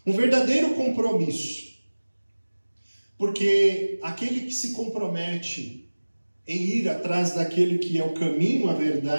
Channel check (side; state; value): both; inverted; correlation -1.00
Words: Um verdadeiro compromisso. Porque aquele que se compromete em ir atrás daquele que é o caminho, a